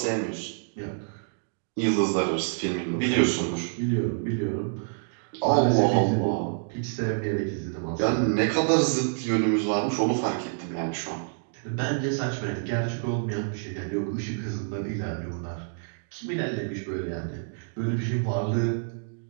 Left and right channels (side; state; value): left; silent; digital silence